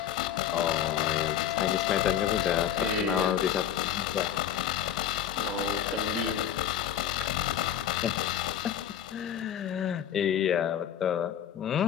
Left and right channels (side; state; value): right; quieter; 9.8 dB